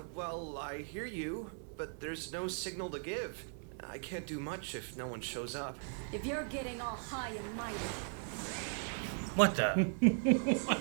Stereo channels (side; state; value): left; silent; 52 dB below the other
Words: Well, I hear you, but there's no signal to give. I can't do much if no one shows up. If you're getting all high and mighty, What the?